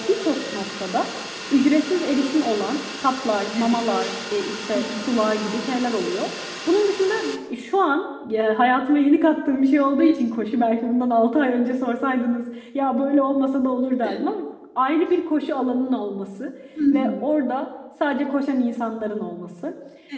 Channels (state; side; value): identical; both; correlation 1.00